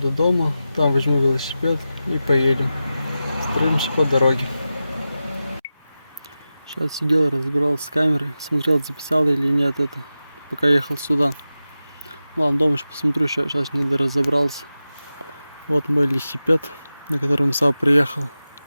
дома, там возьму велосипед и поедем. Строимся по дороге. Сейчас сидел, разбирался с камерой, смотрел, записал или нет это, пока ехал сюда. Ладно, дома еще посмотрю, сейчас не разобрался. Вот мой велосипед, на котором сам приехал.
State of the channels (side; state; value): both; inverted; correlation -0.93